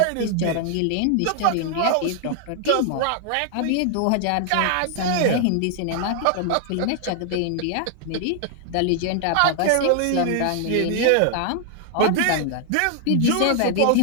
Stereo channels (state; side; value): different; both; correlation 0.00